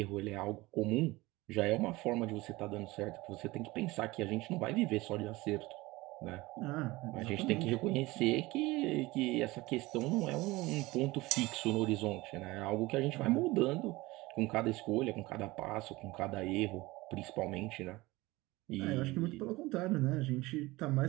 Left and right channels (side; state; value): left; quieter; 20.6 dB